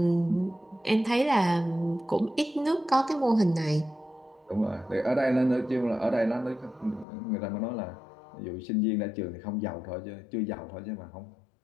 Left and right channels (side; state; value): right; drops out; at 7.1 s